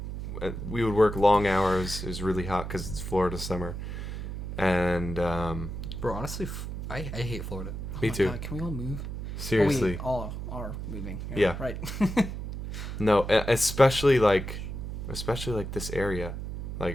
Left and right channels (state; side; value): noise; right; hum, 6 dB below the sound